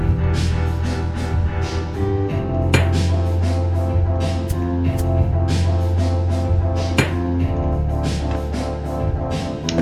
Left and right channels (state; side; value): identical; both; correlation 1.00